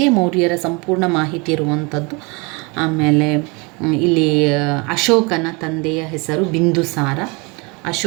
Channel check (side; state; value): left; quieter; 28.9 dB